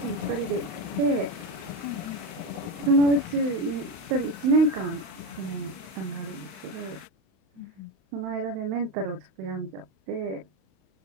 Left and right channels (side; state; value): left; late; 31 ms